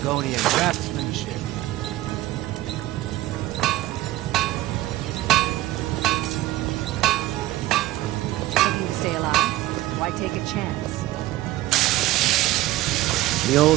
craftsmanship. Looking to stay alive? Why take a chance? The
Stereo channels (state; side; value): quieter; left; 16.5 dB